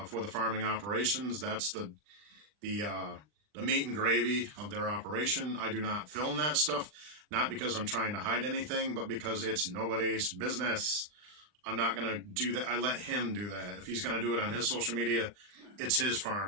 for the farming operations. That's the meat and gravy of their operation. I do not film that stuff, not because I'm trying to hide anything, but because it's nobody's business. I'm not going to do that. I let him do that. If he's going to do it on his social media, it's his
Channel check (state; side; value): late; left; 39 ms